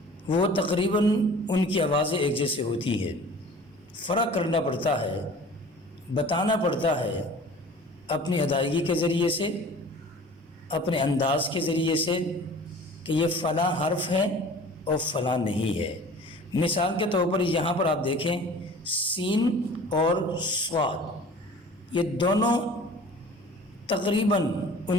وہ تقریباً ان کی آوازیں ایک جیسے ہوتی ہیں، فرق کرنا پڑتا ہے، بتانا پڑتا ہے اپنی ادائیگی کے ذریعے سے، اپنے انداز کے ذریعے سے کہ یہ فلاں حرف ہے اور فلاں نہیں ہے۔ مثال کے طور پر یہاں پر آپ دیکھیں سین اور صاد، یہ دونوں تقریباً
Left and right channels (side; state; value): both; normal; correlation 0.44